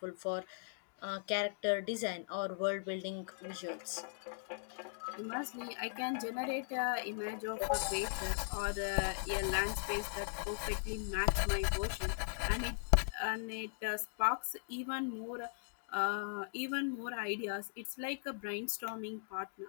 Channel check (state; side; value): silent; right; digital silence